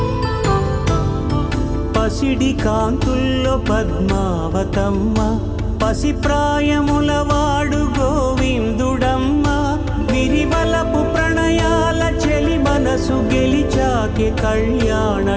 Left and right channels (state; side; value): identical; both; correlation 1.00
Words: పసిడి కాంతుల్లో పద్మావతమ్మ పసిప్రాయముల వాడు గోవిందుడమ్మ విరివలపు ప్రణయాల చెలి మనసు గెలిచాకె కళ్యాణ